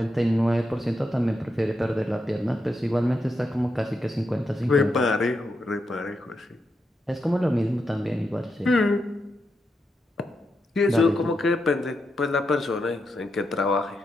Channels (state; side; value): normal; both; correlation 0.84